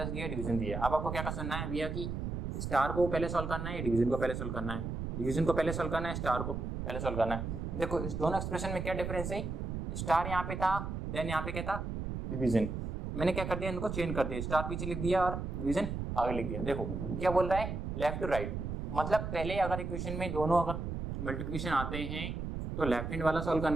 दिया, डिवीजन दिया। अब आपको क्या करना है भैया कि स्टार को पहले सॉल्व करना है या डिवीजन को पहले सॉल्व करना है, डिवीजन को पहले सॉल्व करना है, स्टार को पहले सॉल्व करना है। देखो इस दोनों एक्सप्रेशन में क्या डिफरेंस है, स्टार यहाँ पे था, देन यहाँ पे क्या था, डिवीजन। मैंने क्या कर दिया, इनको चेंज कर दिया, स्टार पीछे लिख दिया और डिवीजन आगे लिख दिया। देखो क्या बोल रहा है, लेफ्ट टू राइट, मतलब पहले अगर इक्वेशन में दोनों अगर मल्टीप्लिकेशन आते हैं तो लेफ्ट हैंड वाला सॉल्व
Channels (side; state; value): right; noise; rumble, 4 dB below the sound